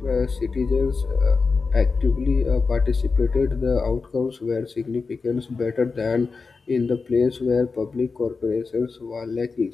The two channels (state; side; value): quieter; right; 4.5 dB